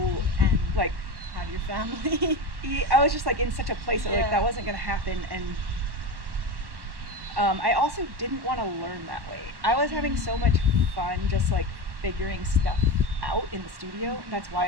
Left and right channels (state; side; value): late; left; 1.1 ms